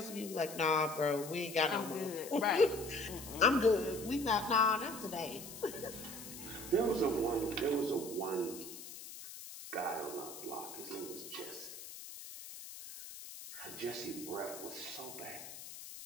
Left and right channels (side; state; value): left; noise; hiss, 12 dB below the sound